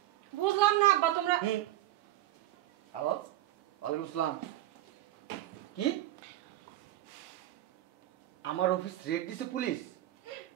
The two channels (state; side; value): quieter; left; 14.5 dB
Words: বুঝলাম না আব্বা তোমরা। হ্যালো, ওয়ালাইকুম আসসালাম। কি আমার অফিস রেড দিছে পুলিশ?